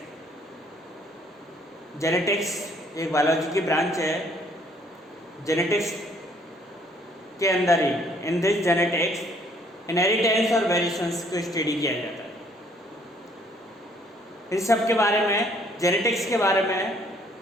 Genetics एक biology की branch है. Genetics के अंदर ही इन दिस जेनेटिक्स इनहेरिटेंस और वेरिएशंस को स्टडी किया जाता है. इस सब के बारे में, जेनेटिक्स के बारे में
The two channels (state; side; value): normal; both; correlation 0.63